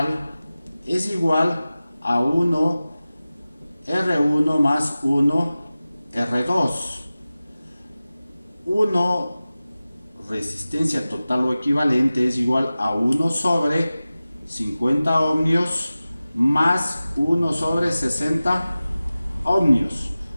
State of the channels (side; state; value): both; inverted; correlation -0.96